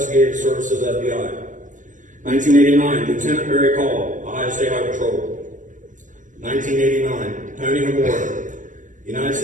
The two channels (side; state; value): left; late; 0.37 ms